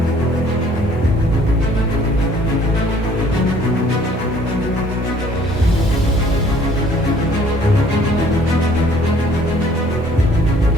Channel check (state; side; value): normal; both; correlation 0.57